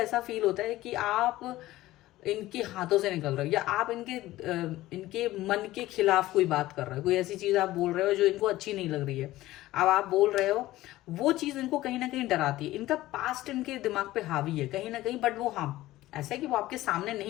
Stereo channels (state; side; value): quieter; right; 16.4 dB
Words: फील होता है कि आप इनके हाथों से निकल रहे हो या आप इनके मन के खिलाफ कोई बात कर रहे हो, कोई ऐसी चीज आप बोल रहे हो जो इनको अच्छी नहीं लग रही है, अब आप बोल रहे हो, वो चीज इनको कहीं ना कहीं डराती है। इनका पास्ट इनके दिमाग पे हावी है कहीं ना कहीं, बट वो हाँ ऐसा है कि वो आपके सामने